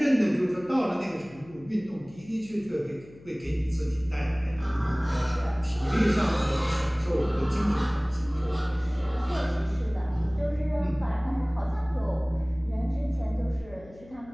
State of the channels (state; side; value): noise; left; hum, 21 dB below the sound